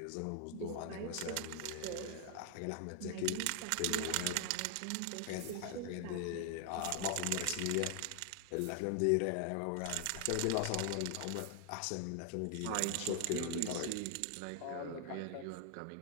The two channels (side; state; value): both; different; correlation 0.00